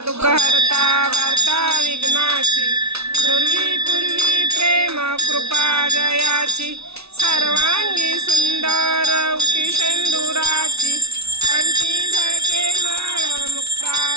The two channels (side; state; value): left; late; 0.80 ms